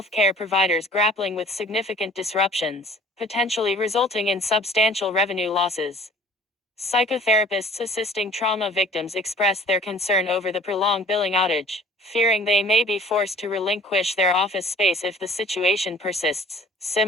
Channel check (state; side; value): normal; both; correlation 0.50